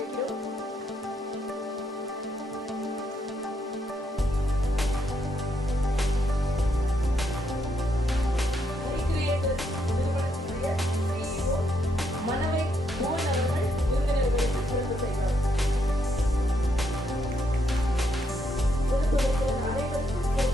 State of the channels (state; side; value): normal; both; correlation 0.77